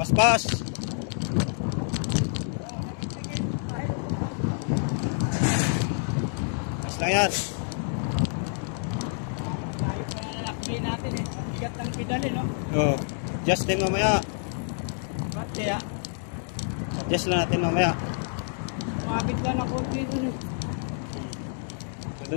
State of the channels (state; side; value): silent; right; 59 dB below the other